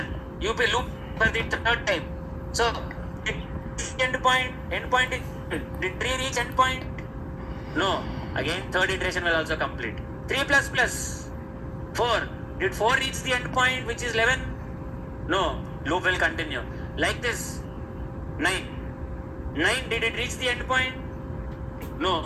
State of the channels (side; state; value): both; identical; correlation 1.00